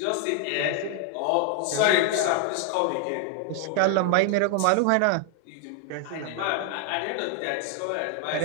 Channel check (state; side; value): different; both; correlation 0.00